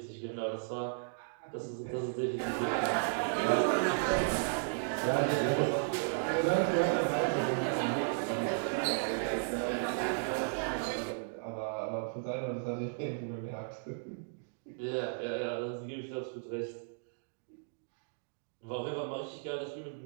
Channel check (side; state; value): left; silent; digital silence